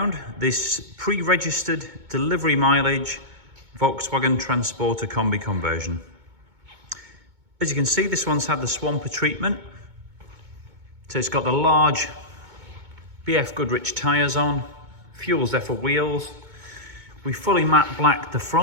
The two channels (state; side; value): late; left; 2.2 ms